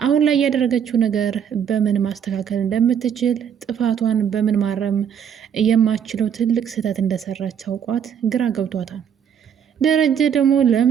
ላይ ያደረገችው ነገር በምን ማስተካከል እንደምትችል ጥፋቷን በምን ማረም የማችለው ትልቅ ስህተት እንደሰራች አውቋት ግራ ገብቷታል። ደረጀ ደግሞ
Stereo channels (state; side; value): quieter; left; 8.2 dB